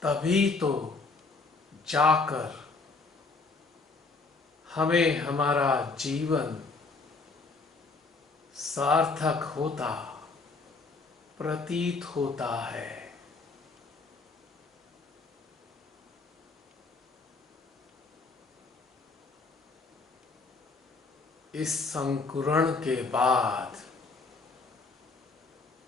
तभी तो जाकर हमें हमारा जीवन सार्थक होता प्रतीत होता है। इस अंकुरण के बाद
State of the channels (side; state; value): right; quieter; 4.0 dB